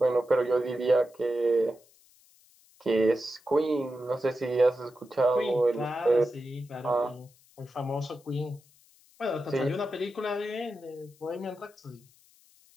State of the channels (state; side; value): noise; left; hiss, 29 dB below the sound